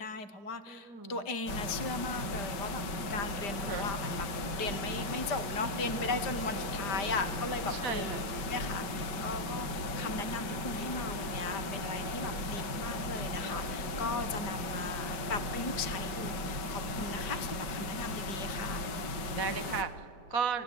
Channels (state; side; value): late; right; 5.2 ms